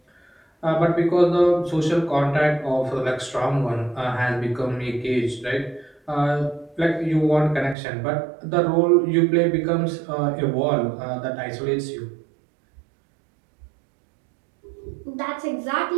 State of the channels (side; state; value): left; drops out; at 7.8 s